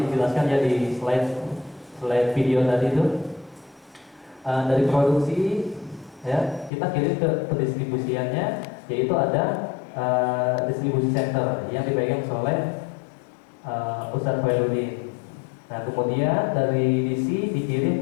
ya di slide video tadi itu dari produksi ya kita kirim ke pendistribusiannya, yaitu ada distribusi center yang dipegang oleh Ustadz Khairuddin. Nah, kemudian dari DC dikirim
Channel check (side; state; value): right; drops out; at 6.7 s